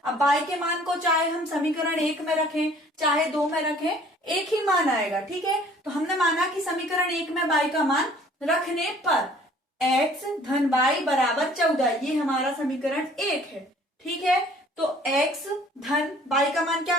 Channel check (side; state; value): both; normal; correlation 0.54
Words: अब y के मान को चाहे हम समीकरण 1 में रखें चाहे 2 में रखें, एक ही मान आएगा, ठीक है। तो हमने माना कि समीकरण 1 में y का मान रखने पर x धन y बराबर 14, ये हमारा समीकरण 1 है, ठीक है। तो x धन y का मान क्या